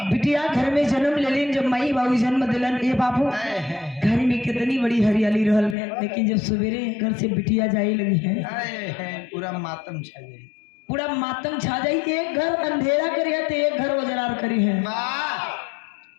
बिटिया घर में जन्म लेलिन, जब मई बाबू जन्म दिलन, ये बाबू घर में कितनी बड़ी हरियाली रहल, लेकिन जब सवेरे घर से बिटिया जाई लगी है पूरा मातम छा जाई, पूरा मातम छा जाई। एक घर अंधेरा करी है तो एक घर उजरार करी है।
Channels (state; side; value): drops out; right; at 5.8 s